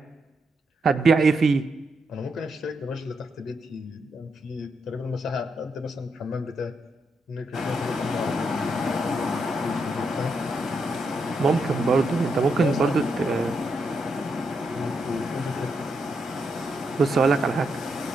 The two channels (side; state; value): both; normal; correlation 0.81